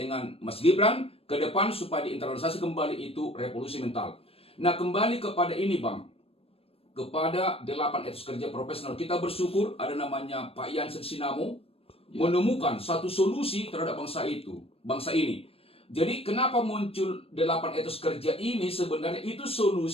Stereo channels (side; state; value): right; late; 0.28 ms